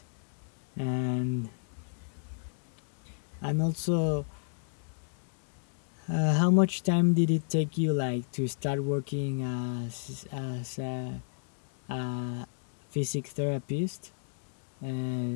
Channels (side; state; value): right; silent; digital silence